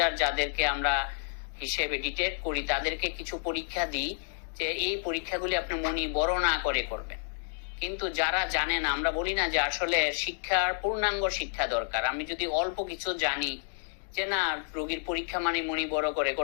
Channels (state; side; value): silent; right; digital silence